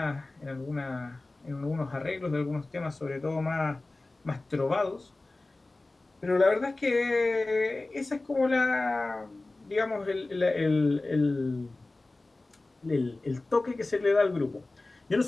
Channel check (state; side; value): quieter; right; 3.1 dB